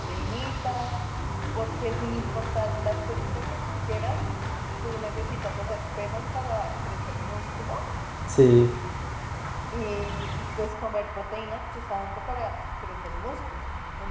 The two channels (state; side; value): identical; both; correlation 1.00